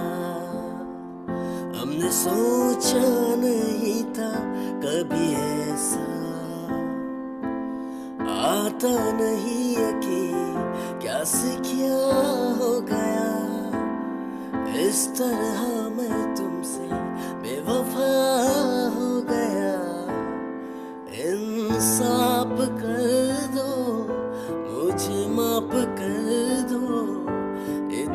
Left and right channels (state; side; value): identical; both; correlation 1.00